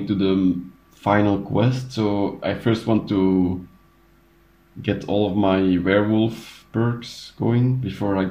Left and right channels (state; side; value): identical; both; correlation 1.00